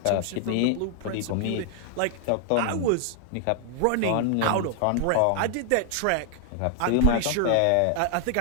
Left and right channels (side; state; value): both; different; correlation 0.00